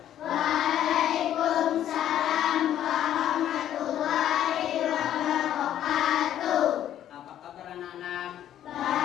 Waalaikumsalam warahmatullahi wabarakatuh. Apa kabar anak-anak?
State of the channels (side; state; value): right; quieter; 11.2 dB